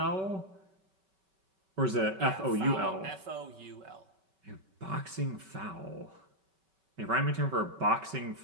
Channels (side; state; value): left; late; 5.2 ms